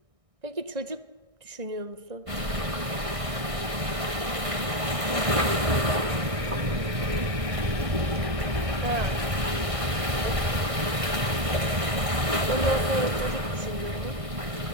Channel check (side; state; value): left; late; 1.6 ms